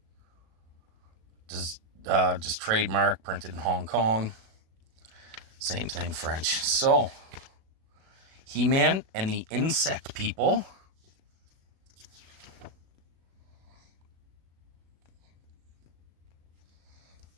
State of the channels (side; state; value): left; late; 36 ms